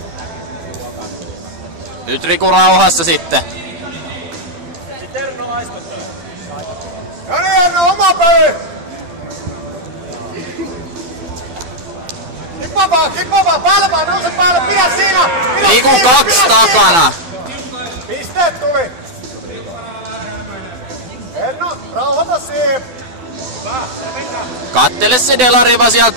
Nyt Riku rauhassa sitten. Oma peli! Kippa vaan, päälle vaan, nouse päälle, pidä siinä! Riku 2 takana. Pisteet tuli! Erno, rauhoita siihen! Kattele se delariva sieltä.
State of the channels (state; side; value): late; left; 12 ms